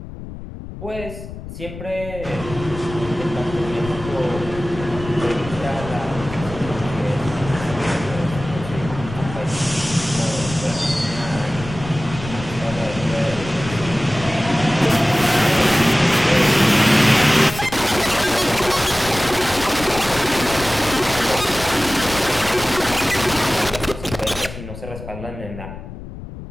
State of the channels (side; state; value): left; noise; rumble, 12 dB below the sound